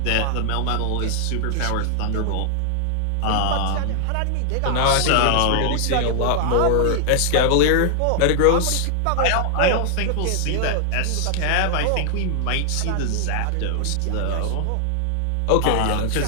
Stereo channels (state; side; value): different; both; correlation 0.00